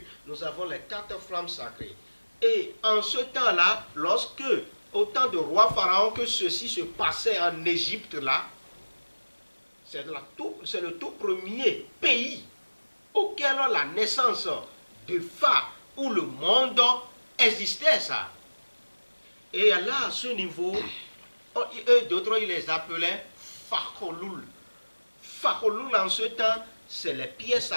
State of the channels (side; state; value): both; inverted; correlation -1.00